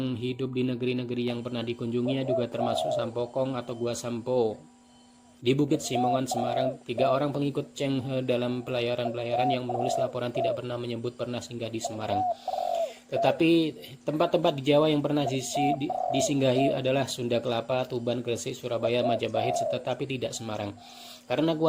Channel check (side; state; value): both; identical; correlation 1.00